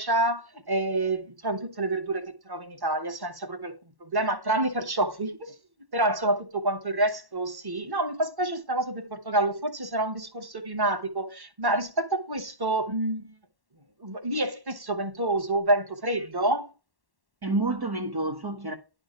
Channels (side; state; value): left; late; 1.1 ms